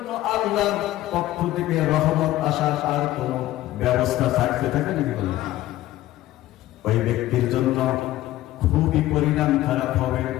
আল্লাহর পক্ষ থেকে রহমত আসার আর কোন ব্যবস্থা থাকতে থাকে নাকি? বলেন, ওই ব্যক্তির জন্য খুবই পরিণাম খারাপ হবে।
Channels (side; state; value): right; quieter; 15.2 dB